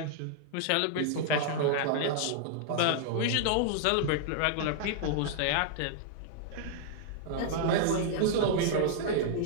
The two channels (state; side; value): different; both; correlation -0.01